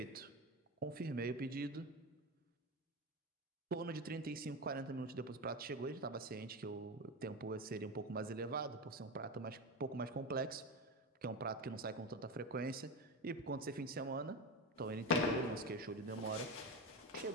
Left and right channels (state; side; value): normal; both; correlation 0.20